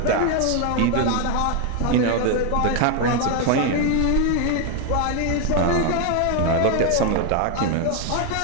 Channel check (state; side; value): different; both; correlation 0.01